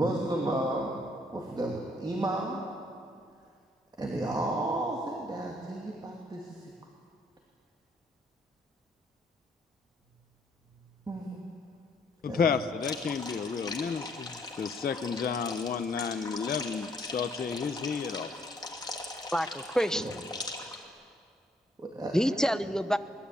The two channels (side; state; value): both; normal; correlation 0.67